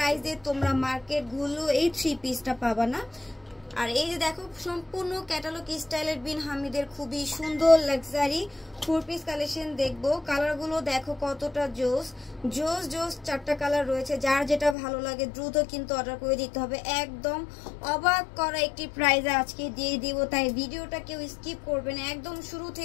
তোমরা মার্কেট গুলো এই 3 পিসটা পাবা না। আর এই যে দেখো সম্পূর্ণ ক্যাটালগ স্টাইলের বিন হামিদের খুবই সুন্দর লাক্সারি 4 পিস কালেকশন দেখবো। কালারগুলো দেখো কতটা জোস জোস জোস, 4টা কালার রয়েছে। যার যেটা ভালো লাগে দ্রুত কিন্তু অর্ডার করে দিতে হবে। একদম অবাক করা একটি প্রাইজে আজকে দিয়ে দিব, তাই ভিডিওটা কেউ স্কিপ করবে না, একদম শুরু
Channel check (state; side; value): drops out; right; at 14.8 s